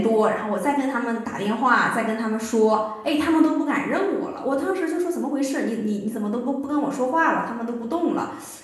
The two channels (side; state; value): both; identical; correlation 1.00